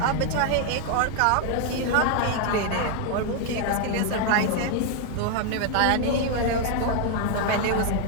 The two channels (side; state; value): both; different; correlation 0.00